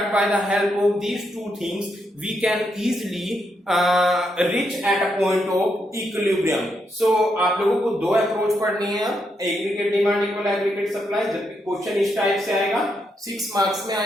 by the help of these two things we can easily reach at a point of equilibrium. So आप लोगों को दो approach पढ़नी है, aggregate demand equal aggregate supply. जब भी question इस type से आएगा 6 मार्क्स में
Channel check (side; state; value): both; normal; correlation 0.80